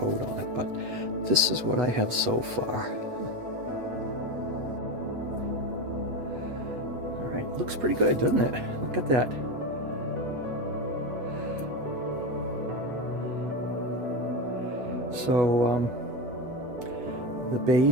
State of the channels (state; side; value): late; left; 8.2 ms